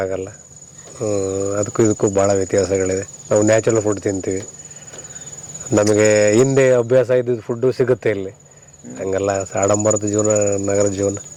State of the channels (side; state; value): both; identical; correlation 1.00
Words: ಅದಕ್ಕೂ ಇದಕ್ಕೂ ಭಾಳ ವ್ಯತ್ಯಾಸಗಳಿದೆ. ನಾವು ನ್ಯಾಚುರಲ್ ಫುಡ್ ತಿಂತೀವಿ, ನಮಗೆ ಹಿಂದೆ ಅಭ್ಯಾಸ ಇದ್ದಿದ್ದು ಫುಡ್ಡು ಸಿಗುತ್ತೆ ಇಲ್ಲಿ. ಹಂಗಲ್ಲ ಆಡಂಬರದ ಜೀವನ, ನಗರದ ಜೀವನ.